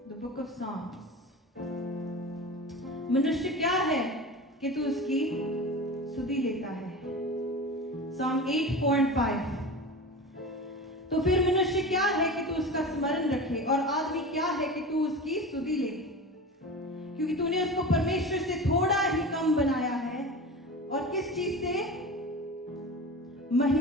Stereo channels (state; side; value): normal; both; correlation 0.31